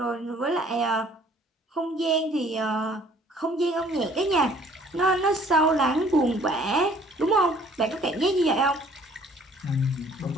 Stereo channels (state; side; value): normal; both; correlation 0.56